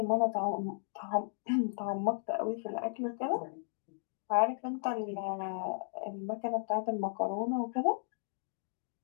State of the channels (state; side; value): silent; right; digital silence